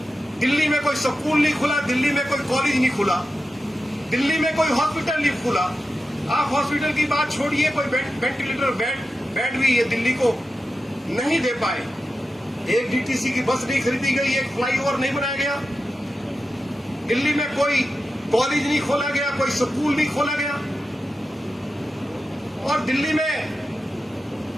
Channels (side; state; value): both; normal; correlation 0.91